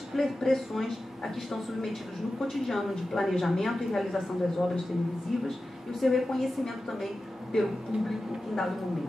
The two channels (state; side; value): normal; both; correlation 0.93